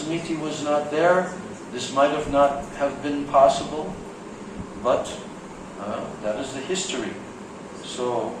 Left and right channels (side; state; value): both; identical; correlation 1.00